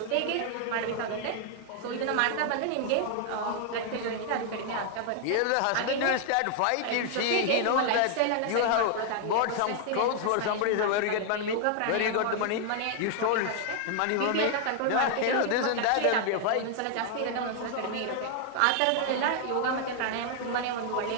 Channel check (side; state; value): both; different; correlation 0.00